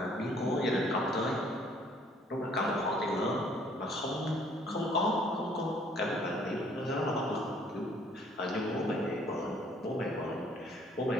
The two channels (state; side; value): normal; both; correlation 0.61